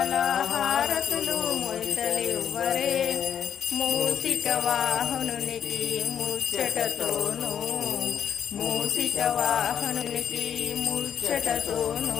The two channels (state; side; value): quieter; right; 8.6 dB